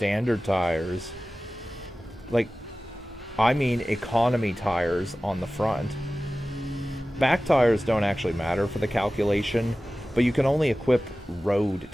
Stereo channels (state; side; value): normal; both; correlation 0.96